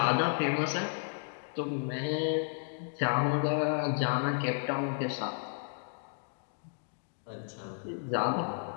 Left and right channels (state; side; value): silent; right; digital silence